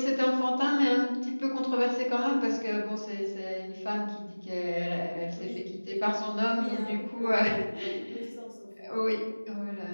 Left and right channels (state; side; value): inverted; both; correlation -1.00